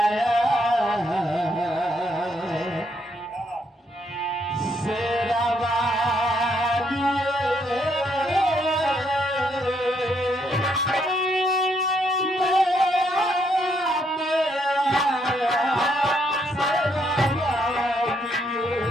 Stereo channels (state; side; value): normal; both; correlation 0.74